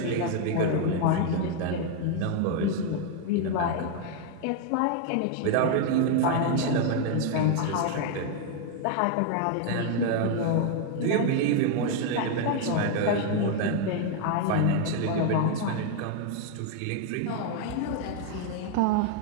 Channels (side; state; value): both; different; correlation 0.00